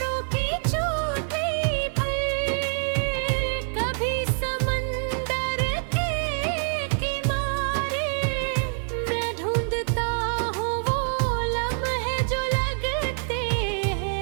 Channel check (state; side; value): silent; left; 61 dB below the other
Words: की चोटी पर, कभी समंदर के किनारे, मैं ढूंढता हूँ वो लम्हे जो लगते